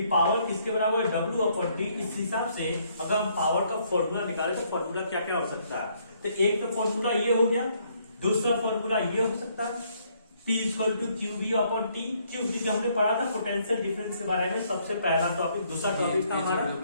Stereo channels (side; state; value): both; inverted; correlation -0.68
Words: पावर किसके बराबर है, W/T। इस हिसाब से अगर हम पावर का फॉर्मूला निकाले तो फॉर्मूला क्या क्या हो सकता है, तो एक तो फॉर्मूला ये हो गया, दूसरा फॉर्मूला ये हो सकता है P = QV/T। क्योंकि जो हमने पढ़ा था पोटेंशियल डिफरेंस के बारे में, सबसे पहला टॉपिक, दूसरा टॉपिक था हमारा